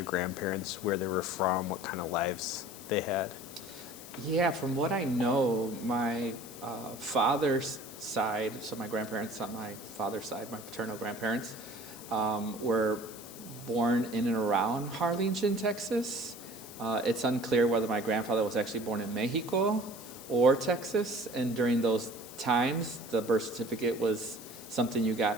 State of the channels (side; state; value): left; noise; hiss, 15 dB below the sound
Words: grandparents, where they were from, what kind of lives they had? Yeah, from what I know, my father's side, so my grandparents on my father's side, my paternal grandparents, were born in and around Harlingen, Texas. It's unclear whether my grandfather was actually born in Mexico or Texas, and during those times, the birth certificate was something you